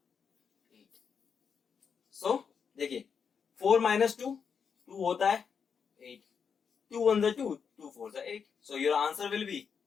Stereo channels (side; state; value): right; quieter; 6.5 dB